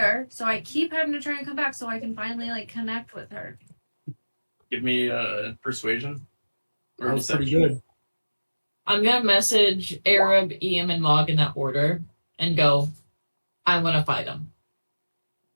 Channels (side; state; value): both; inverted; correlation -1.00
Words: so I keep having to try and come back so I can finally like connect with her. Give me persuasion. Or That was pretty deception. good. I'm gonna message Arab, Eam, and Mog in that order and go, I wanna fight him.